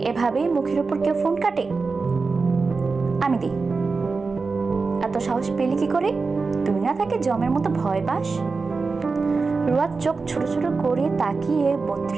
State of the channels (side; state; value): left; quieter; 4.3 dB